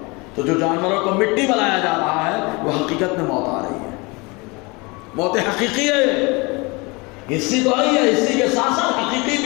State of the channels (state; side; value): quieter; right; 26.6 dB